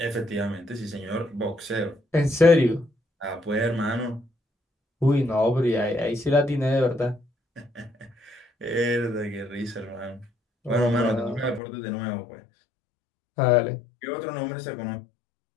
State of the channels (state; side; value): drops out; right; at 11.6 s